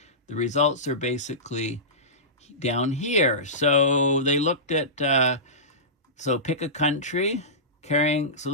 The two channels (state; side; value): normal; both; correlation -0.19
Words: the results are basically down here. So they looked at, so pick a country so